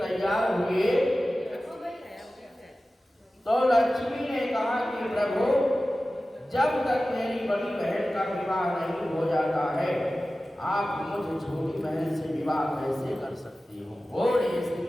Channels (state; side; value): normal; both; correlation 0.95